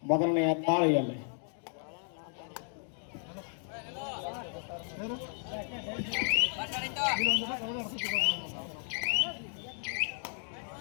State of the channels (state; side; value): silent; right; 55 dB below the other